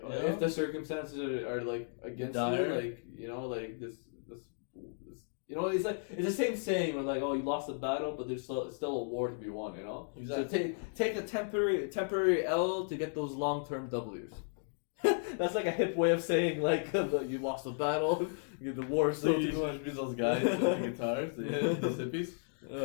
the circumstances are like, against you, like, you know, like, this, you know, it's like, it's the same saying where, like, oh, you lost the battle, but there's still a war to be won, you know? Exactly. So take a temporary L to get those long-term W's. That's like a hip way of saying, like, you lost the battle, the war. So you want to be those guys with the guitars, those hippies?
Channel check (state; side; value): silent; right; digital silence